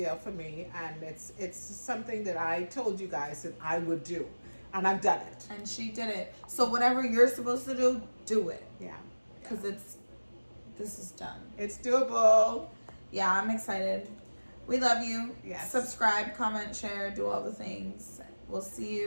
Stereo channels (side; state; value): both; inverted; correlation -1.00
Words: for me. And it's something that I told you guys that I would do, and I've done it. And she did it. So whatever you're supposed to do, do it. Yeah. Because this is done. It's doable. Yeah, I'm excited. We love you. Yes. Subscribe, comment, share, do all the things. We'll see